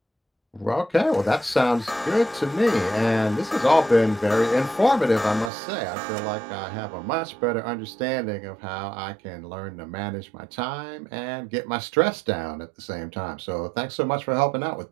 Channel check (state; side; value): drops out; left; at 5.5 s